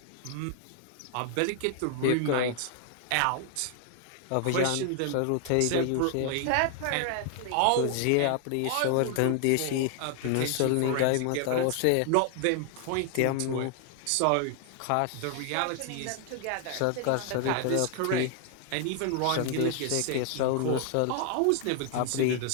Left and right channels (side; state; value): both; different; correlation 0.00